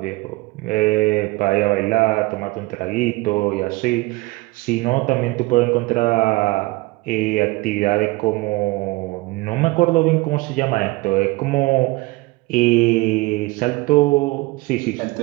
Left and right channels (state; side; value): quieter; left; 22.4 dB